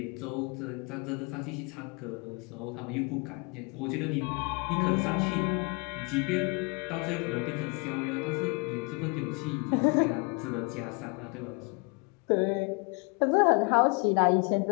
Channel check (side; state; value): right; quieter; 32.0 dB